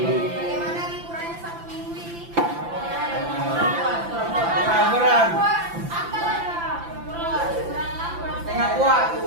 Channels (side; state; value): left; late; 5.9 ms